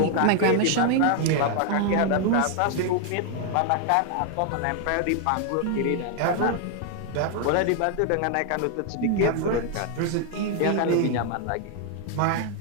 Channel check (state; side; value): different; both; correlation 0.00